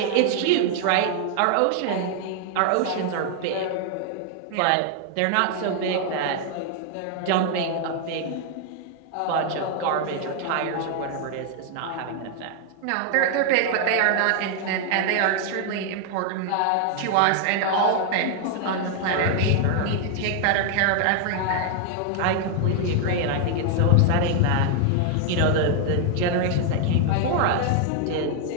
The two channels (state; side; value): different; both; correlation 0.00